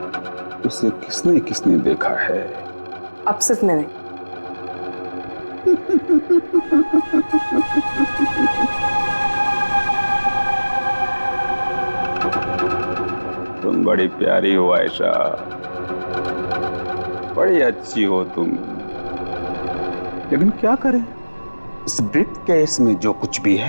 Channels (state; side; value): inverted; both; correlation -1.00